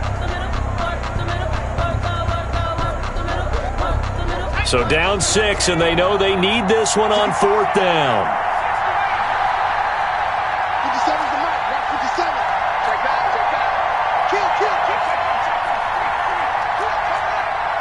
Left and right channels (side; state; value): both; identical; correlation 1.00